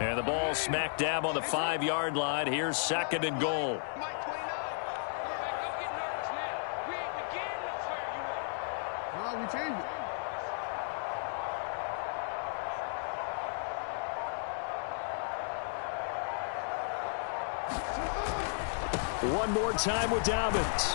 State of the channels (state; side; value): silent; right; digital silence